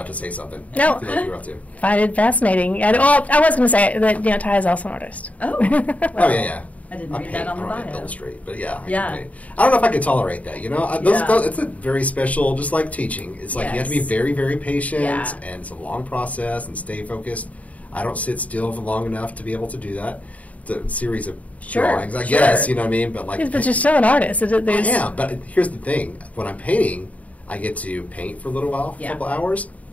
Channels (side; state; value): right; late; 0.069 ms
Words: to say something. No. I feel like you were about to. Find it fascinating. And, I was going to say that Ty is also an artist. Oh. Oh, yeah. I didn't I read paint, that on the I don't bio. illustrate, but yeah. Yeah. I don't know if I could tolerate that, It's a very special, just like teaching. It's like you have to be Yes. very, very patient, Yeah. and it's a long process, and stay focused. I don't sit still for long enough to be able to do that. It's a series of drawings, I guess, you know what I mean? But like, But you're still an artist. I am, but here's the thing. When I'm painting, I get to paint for a little while, a couple hours,